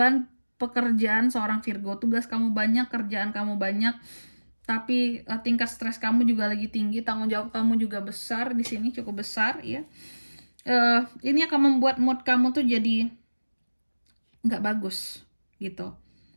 pekerjaan seorang Virgo. Tugas kamu banyak, kerjaan kamu banyak, tapi tingkat stres kamu juga lagi tinggi, tanggung jawab kamu juga besar di sini, cukup besar ya. Ini akan membuat mood kamu tuh jadi nggak bagus gitu.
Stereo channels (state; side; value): inverted; both; correlation -1.00